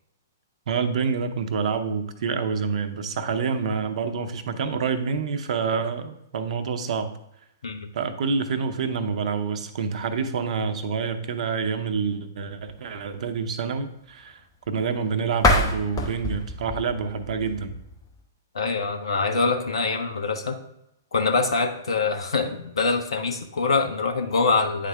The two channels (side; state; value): both; inverted; correlation -0.43